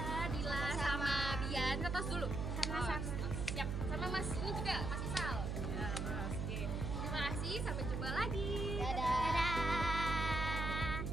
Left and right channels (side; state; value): right; noise; hum, 2 dB below the sound